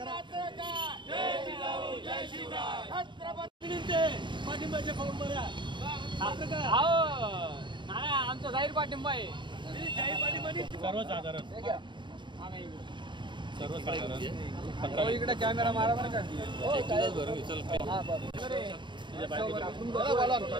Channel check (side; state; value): left; late; 0.23 ms